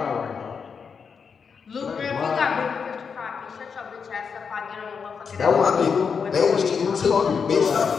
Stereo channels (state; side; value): quieter; right; 6.1 dB